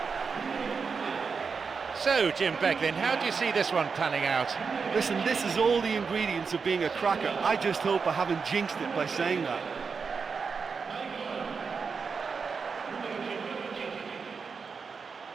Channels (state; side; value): quieter; left; 5.3 dB